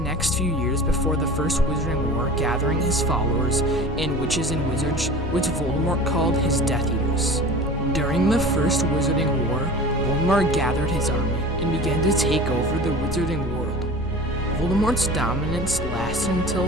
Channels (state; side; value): noise; left; rumble, 11 dB below the sound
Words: few years before the First Wizarding War gathering his followers and witches and wizards, which Voldemort called his Death Eaters. During the First Wizarding War, Voldemort gathered his army and began to take over the Wizarding world. Voldemort's dominance lasted